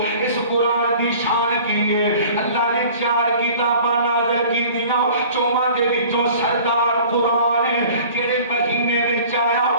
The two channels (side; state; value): both; inverted; correlation -0.46